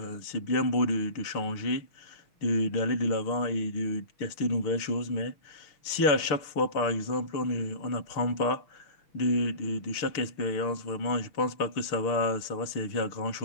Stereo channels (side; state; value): right; late; 6.7 ms